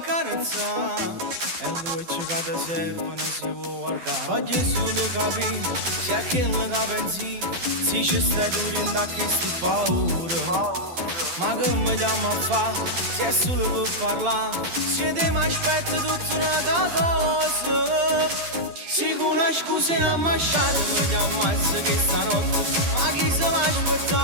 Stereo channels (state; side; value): late; left; 12 ms